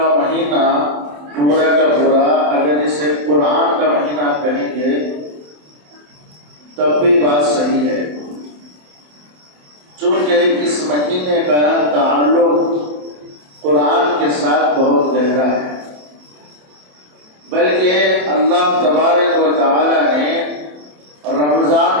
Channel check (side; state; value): left; late; 27 ms